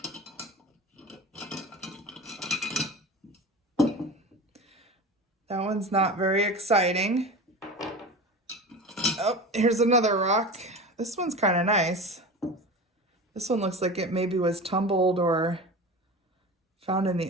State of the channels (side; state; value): both; normal; correlation 0.31